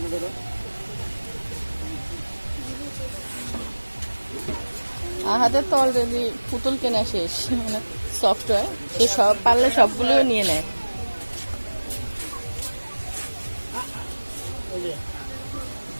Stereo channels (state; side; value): inverted; both; correlation -1.00